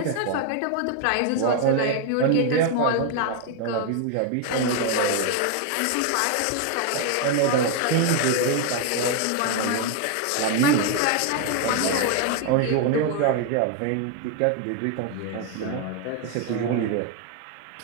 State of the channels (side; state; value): both; different; correlation 0.00